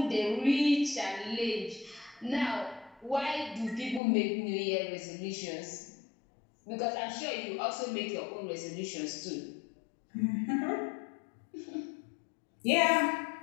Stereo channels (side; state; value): right; drops out; at 4.0 s